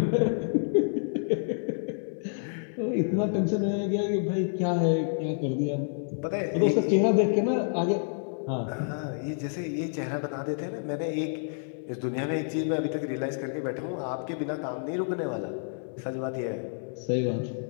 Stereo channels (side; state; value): right; silent; digital silence